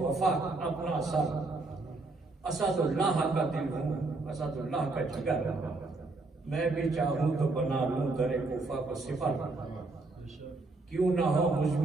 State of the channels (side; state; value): left; quieter; 3.4 dB